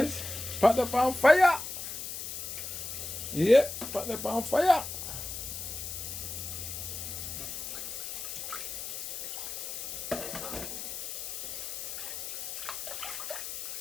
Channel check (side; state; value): left; noise; hiss, 6 dB below the sound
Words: Pot up on fire. Yep, pot up on fire.